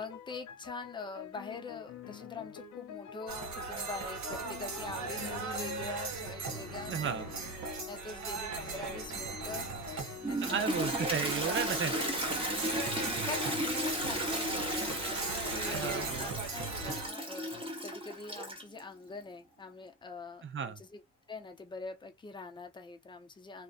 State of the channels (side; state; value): both; normal; correlation 0.18